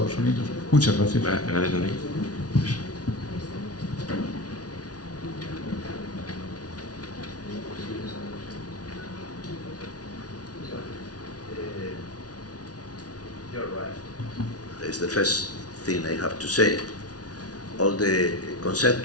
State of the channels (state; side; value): late; right; 0.68 ms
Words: Unidos? Muchas gracias. Gracias, Enrique. Is the first thing I have to say. All the